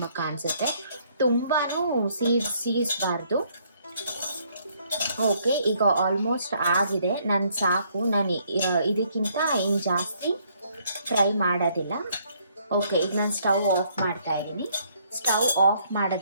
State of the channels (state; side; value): inverted; both; correlation -0.67